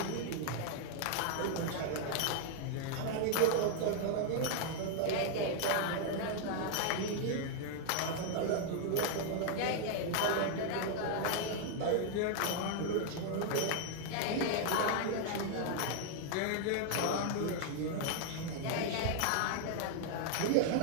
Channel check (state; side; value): different; both; correlation 0.00